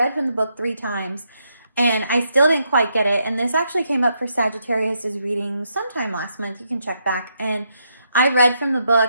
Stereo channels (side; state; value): both; inverted; correlation -0.79